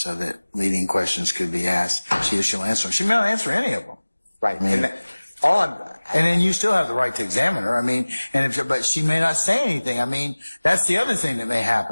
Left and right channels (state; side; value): inverted; both; correlation -1.00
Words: leading questions could be asked. She'll answer them. She may not answer any of them. Right. I mean, and then you still have the right to examine her. I mean, but she may not say anything. I mean, that's the other thing that may